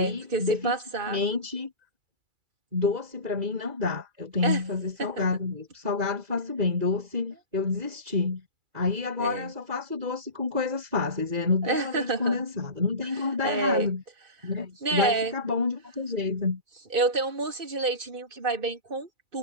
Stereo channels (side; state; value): left; late; 2.3 ms